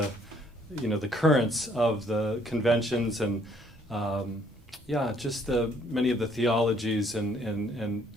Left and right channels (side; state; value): both; normal; correlation 0.64